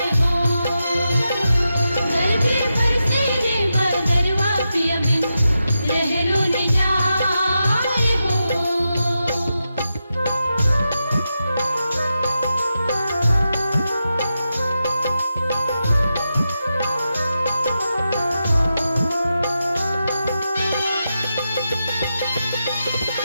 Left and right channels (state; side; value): inverted; both; correlation -0.88